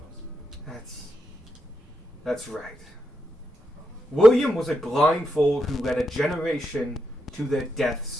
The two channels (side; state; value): both; normal; correlation 0.84